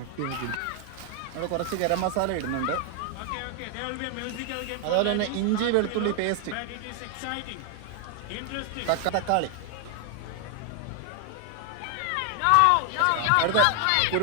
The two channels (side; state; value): both; different; correlation 0.00